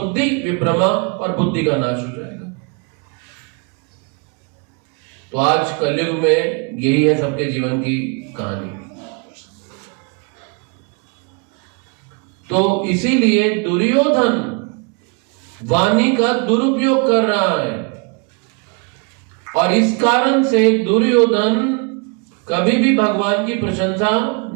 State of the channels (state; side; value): quieter; left; 34.3 dB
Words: विभ्रमा, और बुद्धि का नाश हो जाएगा। तो आज कलयुग में यही है सबके जीवन की कहानी। तो इसीलिए दुर्योधन वाणी का दुरुपयोग कर रहा है, और इस कारण से दुर्योधन कभी भी भगवान की प्रशंसा